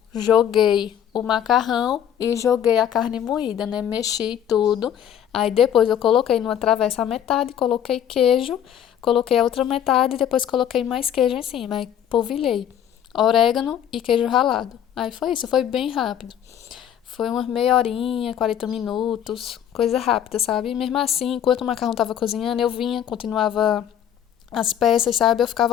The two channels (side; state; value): right; quieter; 9.6 dB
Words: joguei o macarrão e joguei a carne moída, né? Mexi tudo. Aí depois eu coloquei numa travessa a metade, coloquei queijo, coloquei a outra metade e depois coloquei mais queijo em cima. Aí polvilhei orégano e queijo ralado. Aí foi isso, foi bem rápido. Foi umas meia horinha, 40 minutos, coisa rápida, sabe? E mesmo assim, enquanto o macarrão tava cozinhando, eu vinha, continuava as peças, sabe? Eu ficava